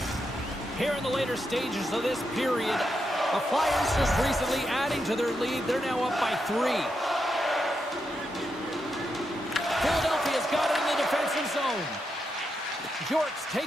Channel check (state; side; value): normal; both; correlation 0.84